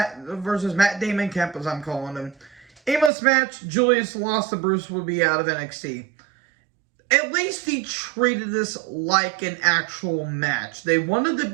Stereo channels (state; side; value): drops out; left; at 3.1 s